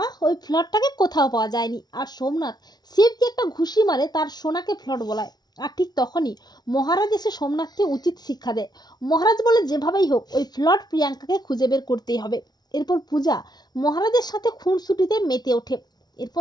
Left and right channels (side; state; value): right; late; 0.19 ms